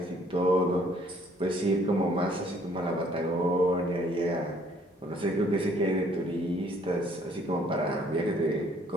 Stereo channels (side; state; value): both; normal; correlation 0.61